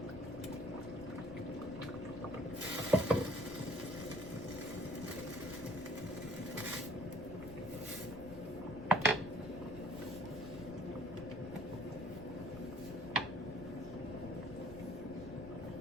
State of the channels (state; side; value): noise; left; rumble, 14 dB below the sound